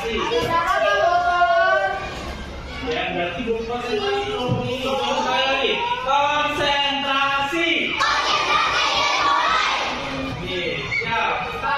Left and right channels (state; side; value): identical; both; correlation 1.00